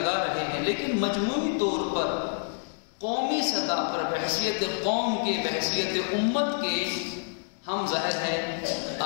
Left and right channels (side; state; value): right; silent; digital silence